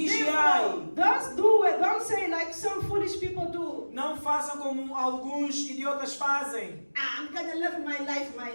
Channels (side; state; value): both; inverted; correlation -1.00